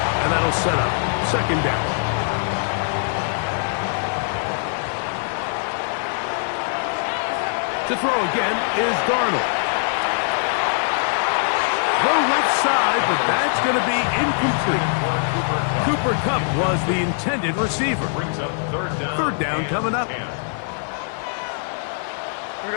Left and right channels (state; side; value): silent; right; 57 dB below the other